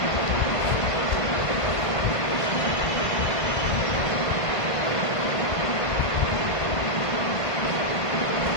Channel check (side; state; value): right; late; 1.5 ms